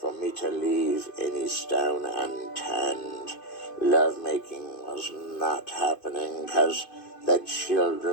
for me to leave any stone unturned. Lovemaking was not happening because the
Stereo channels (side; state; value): right; late; 2.5 ms